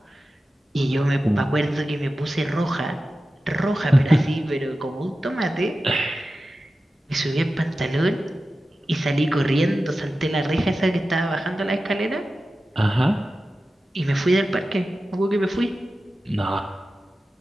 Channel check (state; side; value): normal; both; correlation 0.94